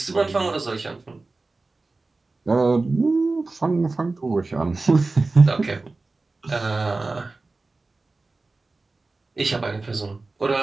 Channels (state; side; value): quieter; left; 3.5 dB